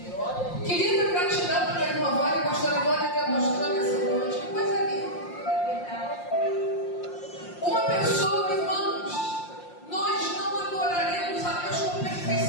Querida, gratidão para a irmã Vânia, a pastora Vânia está mostrando essa noite. Que coisa linda. Uma pessoa, irmãos, nós não adoraremos a Deus com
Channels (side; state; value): right; late; 5.7 ms